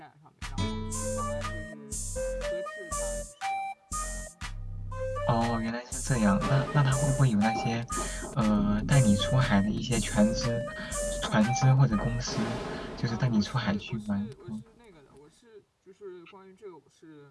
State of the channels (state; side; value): identical; both; correlation 1.00